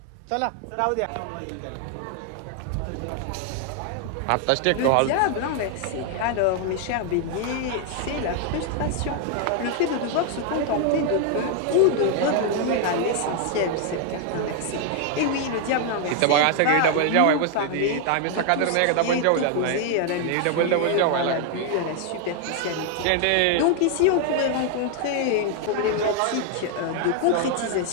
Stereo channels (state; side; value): different; both; correlation 0.00